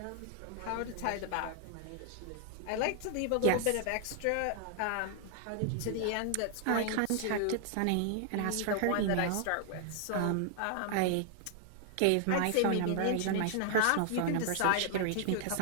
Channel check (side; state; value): both; different; correlation 0.00